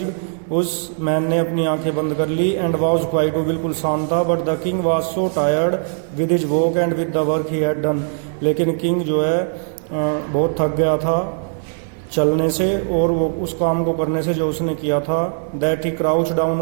उस मैन ने अपनी आंखें बंद कर ली. एंड वाज क्वाइट, वो बिल्कुल शांत था. But the king was so tired with his walk and with the work he had done, लेकिन किंग जो है बहुत थक गया था चलने से और वो उस काम को करने से जो उसने किया था। That he crouch down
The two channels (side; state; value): left; silent; digital silence